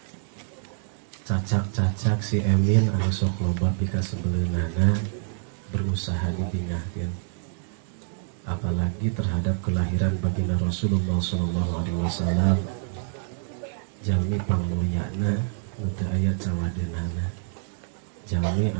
Cacak-cacak si Emin anu sok loba pika sebeleunana berusaha dibingahkeun. Apalagi terhadap kelahiran baginda Rasulullah sallallahu alaihi wasallam. Jalmi pangmulyana nu teu aya cawadeunana. Jalmi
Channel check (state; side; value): silent; left; digital silence